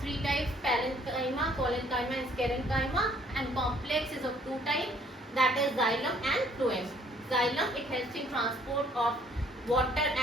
three types: parenchyma, collenchyma and sclerenchyma. And complex is of two types, that is xylem and phloem. Xylem, it helps in transport of water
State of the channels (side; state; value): both; normal; correlation 0.61